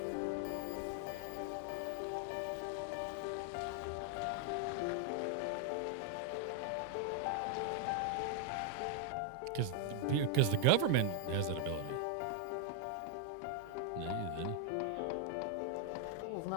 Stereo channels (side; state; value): both; different; correlation 0.00